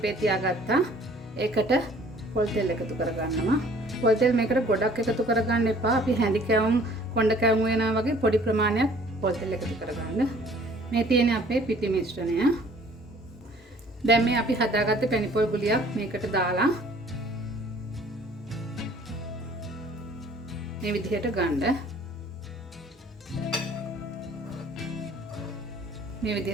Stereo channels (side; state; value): both; normal; correlation 0.54